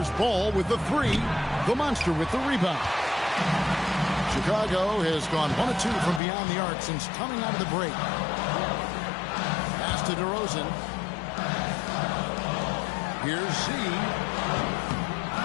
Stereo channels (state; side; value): drops out; right; at 6.2 s